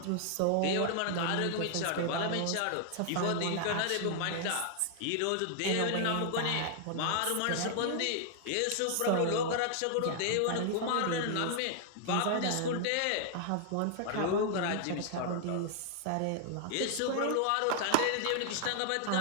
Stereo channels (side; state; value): both; different; correlation 0.00